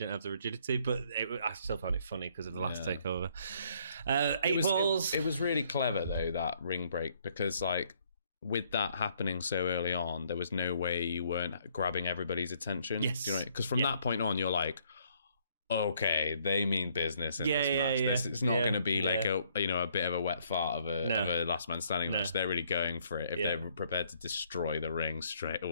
have the rigidity, but I still found it funny because of the last takeover. Balls. It was really clever, though, that ring break, because, like, with that happening so early on, there was no way you weren't grabbing everybody's attention. Yes. You know, because from that point on, you're like, okay, they mean business in this match. It's not going to be like a bit of a wet fart of a last man standing match. They're really going for it if they're prepared to destroy the ring straight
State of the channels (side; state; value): both; inverted; correlation -0.67